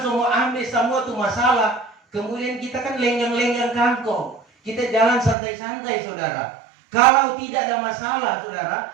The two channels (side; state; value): left; drops out; at 5.4 s